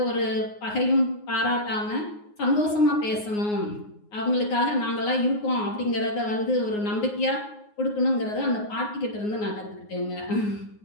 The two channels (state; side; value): late; right; 9.6 ms